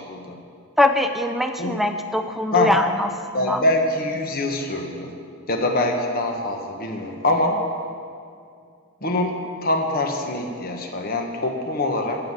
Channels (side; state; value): both; normal; correlation 0.11